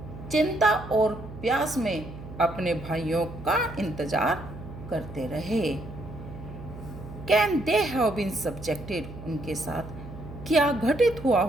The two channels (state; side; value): noise; right; hum, 13 dB below the sound